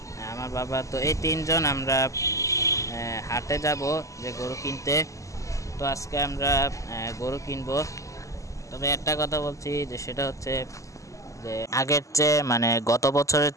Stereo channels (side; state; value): right; late; 0.16 ms